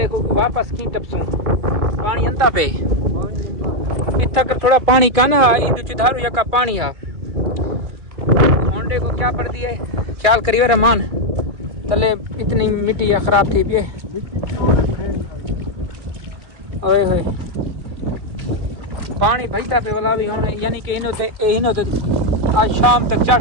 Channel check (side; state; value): left; late; 2.3 ms